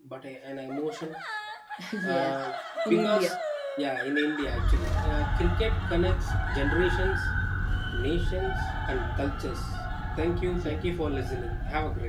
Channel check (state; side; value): identical; both; correlation 1.00